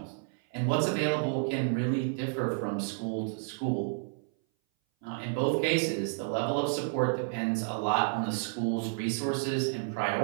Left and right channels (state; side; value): silent; left; 57 dB below the other